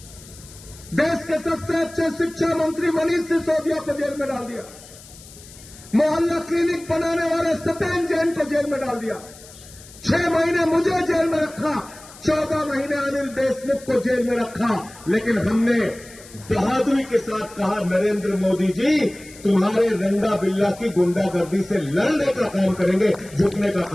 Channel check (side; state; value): left; noise; hiss, 20 dB below the sound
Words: देश के सबसे अच्छे शिक्षा मंत्री मनीष सिसोदिया को जेल में डाल दिया। मोहल्ला क्लिनिक बनाने वाले सत्येंद्र जैन को जेल में डाल दिया। 6 महीने मुझे जेल में रखा, 14 महीने अनिल देशमुख को जेल में रखा। लेकिन हमने बहादुरी के साथ कहा, नरेंद्र मोदी जी तुम्हारे रंगा बिल्ला की गुंडागर्दी से लड़ने का काम करेंगे, झुकने का